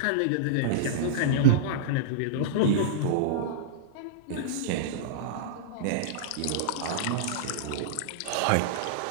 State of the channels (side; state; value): both; different; correlation -0.03